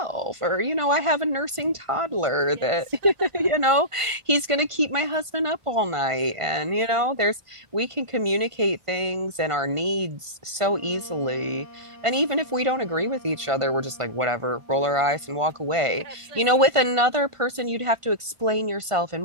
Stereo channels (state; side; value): late; left; 1.5 ms